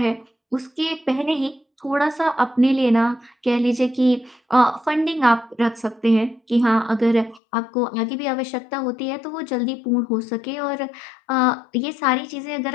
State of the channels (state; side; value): drops out; right; at 7.4 s